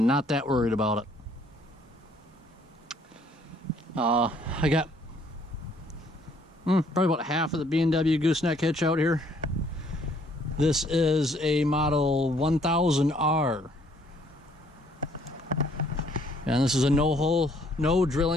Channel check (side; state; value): both; normal; correlation 0.64